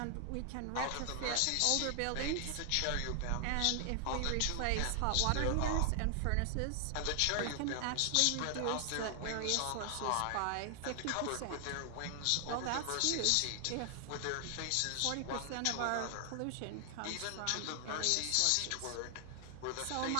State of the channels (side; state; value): both; different; correlation 0.00